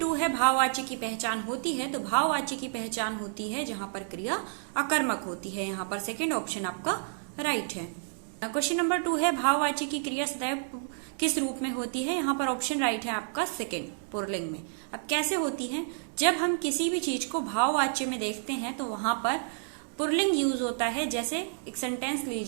है भाववाच्य की पहचान होती है। तो भाववाच्य की पहचान होती है जहां पर क्रिया अकर्मक होती है। यहाँ पर सेकेंड ऑप्शन आपका राइट है। क्वेश्चन नंबर 2 है भाववाच्य की क्रिया सदैव किस रूप में होती है। यहाँ पर ऑप्शन राइट है आपका सेकेंड, पुल्लिंग में। अब कैसे होती है, जब हम किसी भी चीज को भाववाच्य में देखते हैं तो वहां पर पुल्लिंग यूज होता है। जैसे एक सेंटेंस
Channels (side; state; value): left; silent; digital silence